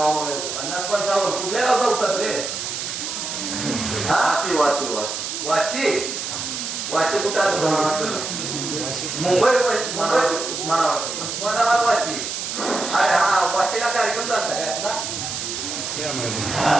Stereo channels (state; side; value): noise; right; hiss, 4 dB below the sound